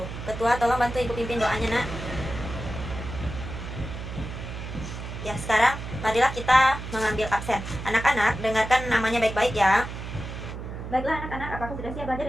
Ketua, tolong bantu Ibu pimpin doanya, Nak. Ya, sekarang marilah kita mengambil absen. Anak-anak, dengarkan namanya baik-baik ya. Baiklah anak-anak, apakah sudah siap belajar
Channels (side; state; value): right; noise; hum, 8 dB below the sound